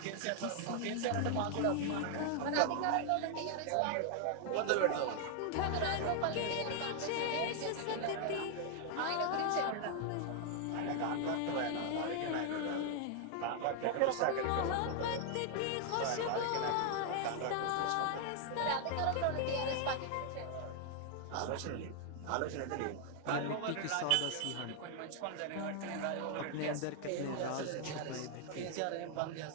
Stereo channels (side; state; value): both; different; correlation 0.00